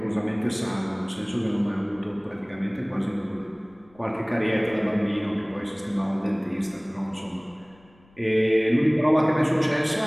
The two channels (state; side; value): noise; left; rumble, 29 dB below the sound